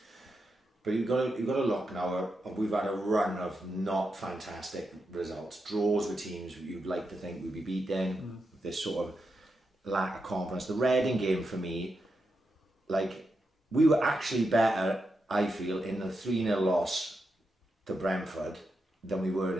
But you've got to look now. We've had a run of not fantastic results, draws with teams you'd like to think we'd be beaten. This sort of lack of confidence. The Reading game for me, like, we were actually better, I feel, in the 3-0 loss to Brentford than we were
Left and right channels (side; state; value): both; normal; correlation 0.86